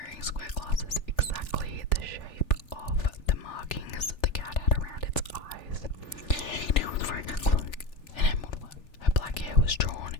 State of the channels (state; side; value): late; right; 3.4 ms